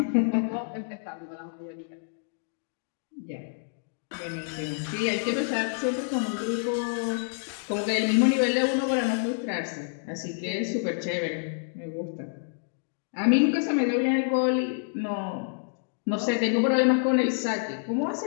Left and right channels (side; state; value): right; silent; digital silence